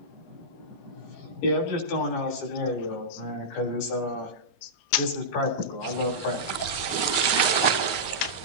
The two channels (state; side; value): late; right; 21 ms